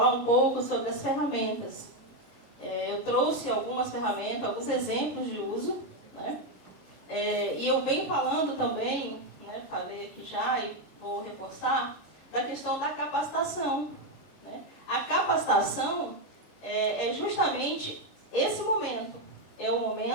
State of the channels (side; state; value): right; late; 26 ms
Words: um pouco sobre as ferramentas. Eu trouxe algumas ferramentas, alguns exemplos de uso, né? E eu venho falando também, né, falei aqui já, e vou reforçar, da questão da capacitação, né? A capacitação é justamente esse momento, é o